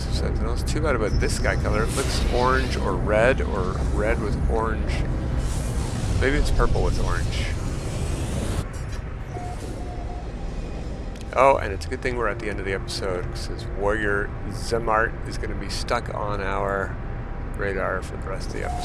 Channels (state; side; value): identical; both; correlation 1.00